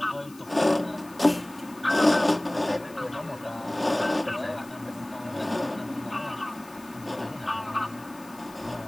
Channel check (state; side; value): noise; left; hiss, 23 dB below the sound